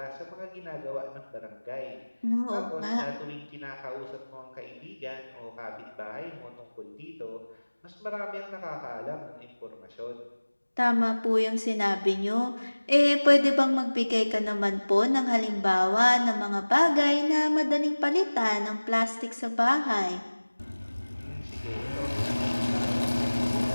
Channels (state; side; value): inverted; both; correlation -1.00